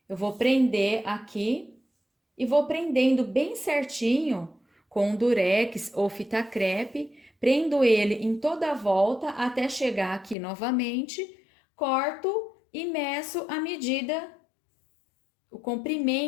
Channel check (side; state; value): right; drops out; at 10.4 s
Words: Eu vou prender aqui e vou prendendo bem certinho com durex ou fita crepe, prendo ele em toda a volta até chegar aqui novamente, corto e meço a medida, o